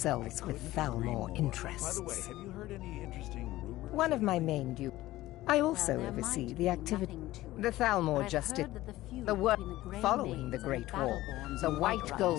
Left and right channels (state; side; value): quieter; right; 16.6 dB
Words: with Thalmor interests. By the way, have you heard any interesting rumors? One of my main duties. I also Well, there oversee might the be activity. nothing to it, The Thalmor but I've just did heard that the feud the work between the Grey following the Maids and Great the War. Battleborns The and White White Gold